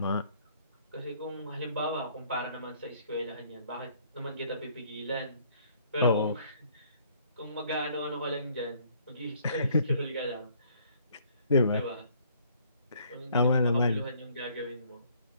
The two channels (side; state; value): both; inverted; correlation -0.62